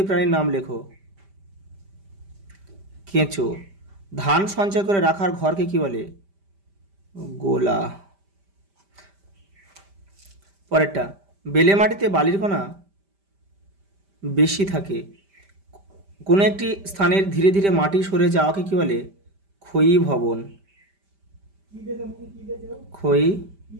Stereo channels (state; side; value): late; left; 5.1 ms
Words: প্রাণীর নাম লেখো। কেঁচো। ধান সঞ্চয় করে রাখার ঘরকে কি বলে? গোলা। পরেরটা, বেলে মাটিতে বালির কণা বেশি থাকে। কোনো একটি স্থানের ধীরে ধীরে মাটি সরে যাওয়াকে কি বলে? ক্ষয়ী ভবন।